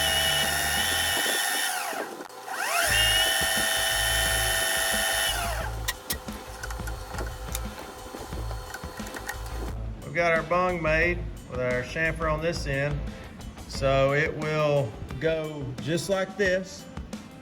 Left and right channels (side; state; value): both; identical; correlation 1.00